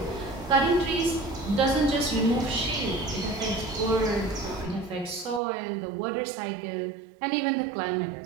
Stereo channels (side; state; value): left; drops out; at 5.4 s